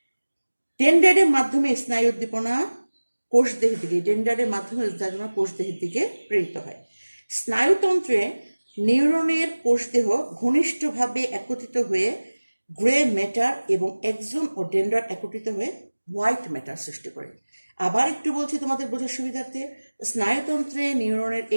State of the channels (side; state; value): both; inverted; correlation -1.00